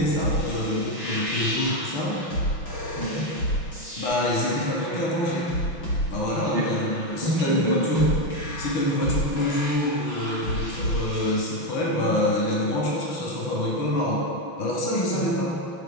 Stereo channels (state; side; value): late; right; 6.0 ms